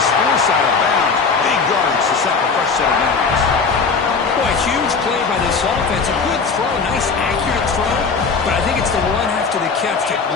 forced out of bounds. Big yards to set the fresh set of downs. Boy, huge play by this offense. A good throw, nice accurate throw. But I think it's the run after the catch that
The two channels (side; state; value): right; quieter; 5.0 dB